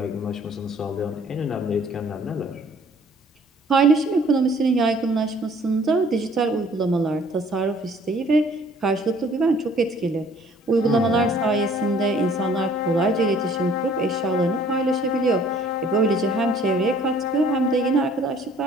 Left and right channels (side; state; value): both; normal; correlation 0.57